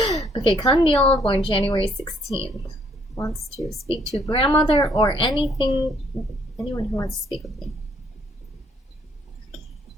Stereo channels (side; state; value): both; normal; correlation 0.66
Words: Okay, Kandil, born January 16th. Wants to speak to grandmother or anyone who wants to speak with me.